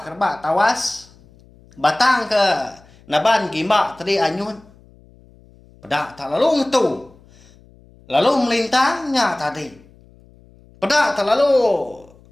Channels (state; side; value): noise; left; hum, 27 dB below the sound